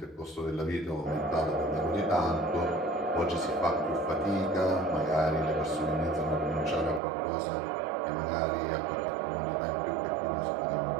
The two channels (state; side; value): drops out; left; at 7.0 s